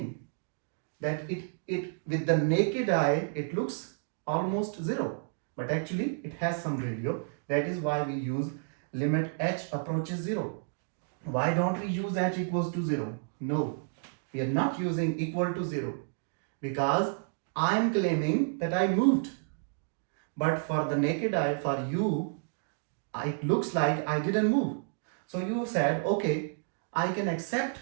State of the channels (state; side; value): silent; left; digital silence